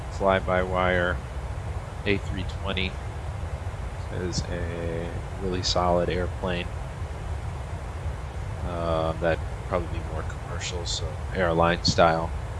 fly-by-wire A320 is a really solid airplane. That'd probably be more commercial, so airline style.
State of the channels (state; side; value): identical; both; correlation 1.00